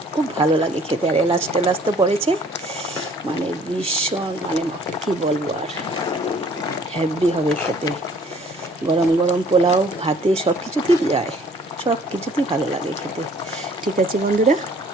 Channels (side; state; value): both; normal; correlation 0.56